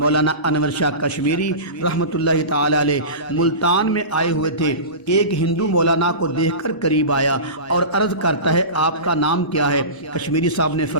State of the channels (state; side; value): late; right; 1.0 ms